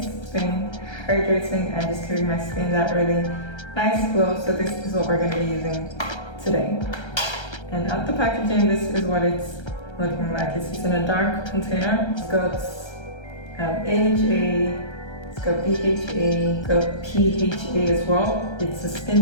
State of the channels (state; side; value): late; right; 1.3 ms